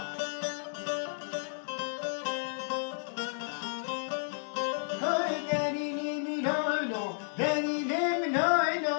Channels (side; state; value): right; silent; digital silence